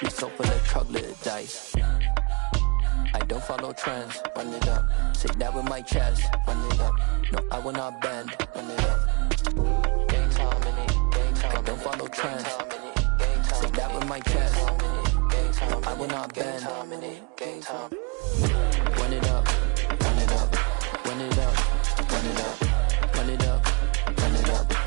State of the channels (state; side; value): quieter; left; 31.7 dB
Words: so full of troglodytes. I don't follow trends. Run it up. Say that with my chest. Run it up. No, I will not bend. Run it up. Game time in it. Game time. I don't follow trends. Say that with my chest. No, I will not bend. Game time. Run it up. Run it up. Run it up. Run it up. Run it up. Run it up.